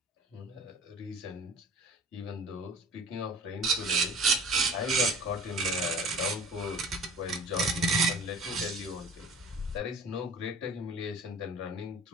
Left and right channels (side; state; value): both; normal; correlation 0.42